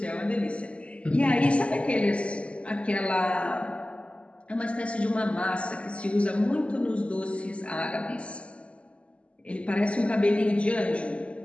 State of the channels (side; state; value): right; late; 0.058 ms